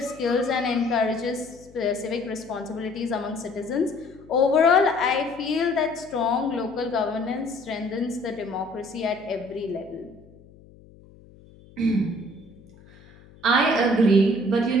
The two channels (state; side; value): noise; left; hum, 24 dB below the sound